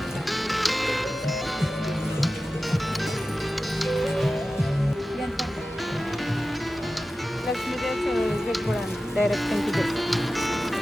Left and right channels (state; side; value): normal; both; correlation 0.94